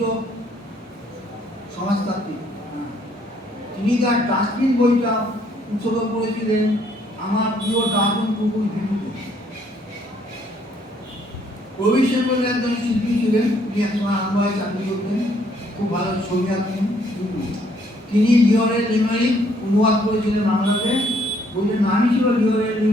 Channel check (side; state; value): both; normal; correlation 0.66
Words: সমাজতান্ত্রিক, তিনি তার ডাস্টবিন বইটা উৎসর্গ করেছিলেন আমার প্রিয় ডাস্টবিন কুকুর ভিডিওতে। প্রবীর সেন বলে একজন শিল্পী ছিলেন, তিনি একসময় আনন্দে চাকরি করতেন, খুব ভালো ছবি আঁকতেন। তিনি লিওরের লিমেরিক অনুবাদ করেছিলেন বাংলাতে। বইটার নামই ছিল লিওরের